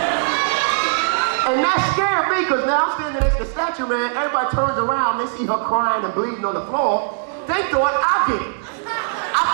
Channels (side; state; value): left; silent; digital silence